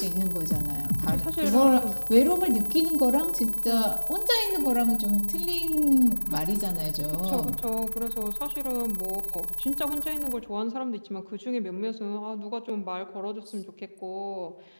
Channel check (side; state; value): both; inverted; correlation -1.00